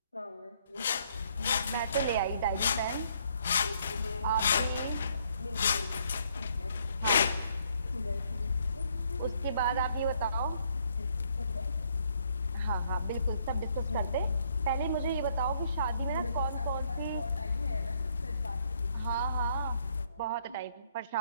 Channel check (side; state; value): both; inverted; correlation -0.69